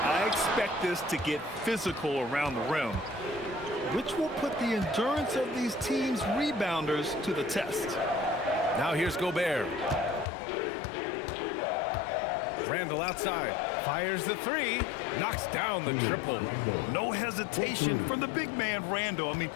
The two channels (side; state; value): right; drops out; at 10.2 s